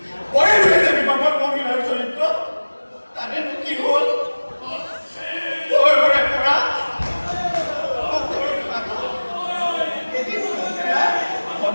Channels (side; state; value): both; inverted; correlation -1.00